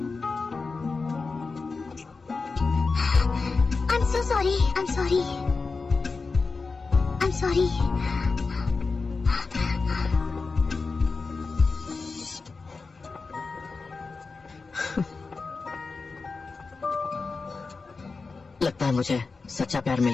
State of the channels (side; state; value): right; quieter; 4.3 dB